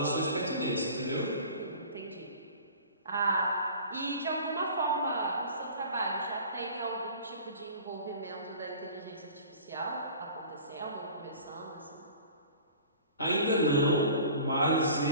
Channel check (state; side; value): inverted; both; correlation -0.43